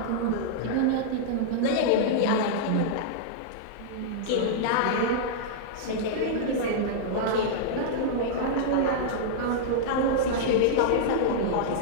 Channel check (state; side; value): different; both; correlation -0.02